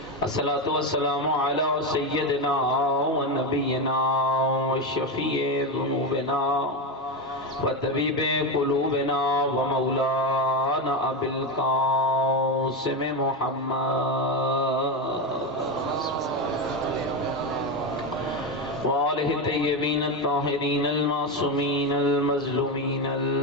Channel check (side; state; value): both; normal; correlation 0.13